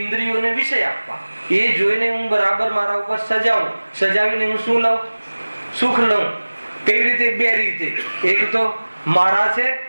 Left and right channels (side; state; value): both; inverted; correlation -1.00